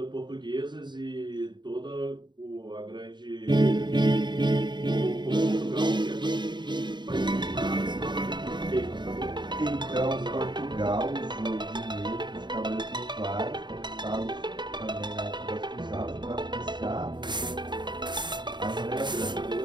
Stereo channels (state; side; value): late; left; 0.22 ms